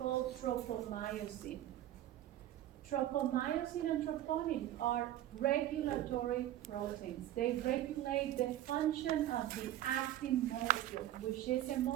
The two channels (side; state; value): left; quieter; 13.1 dB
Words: tropomyosin. Tropomyosin and troponin are regulatory proteins. They regulate the function of the actin molecule, which is a